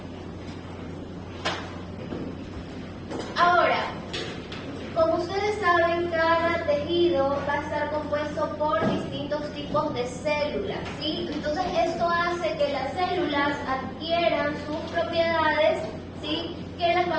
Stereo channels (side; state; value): both; identical; correlation 1.00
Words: Ahora, como ustedes saben, cada tejido va a estar compuesto por distintos tipos de células, ¿sí? Entonces esto hace que las células adquieran sus propiedades, ¿sí? Que las